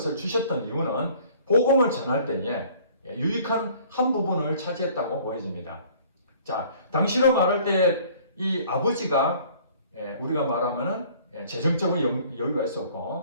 주셨던 이유는 복음을 전할 때에 유익한 한 부분을 차지했다고 보여집니다. 자, 당시로 말할 때 이 아버지가 우리가 말하면은 재정적으로 여유가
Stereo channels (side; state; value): both; inverted; correlation -0.54